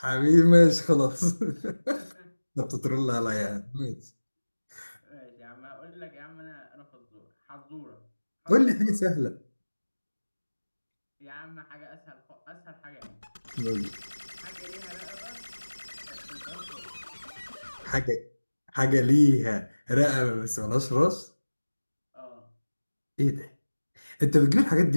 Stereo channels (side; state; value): both; inverted; correlation -1.00